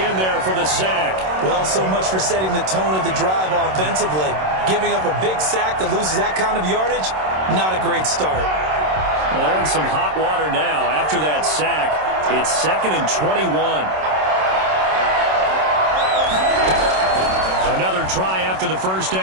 there for the sack. Well, so much for setting the tone of the drive offensively. Giving up a big sack that loses that kind of yardage, not a great start. Well, they're in some hot water now. After that sack, it's 2nd and 21. Another try after the first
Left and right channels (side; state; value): left; late; 27 ms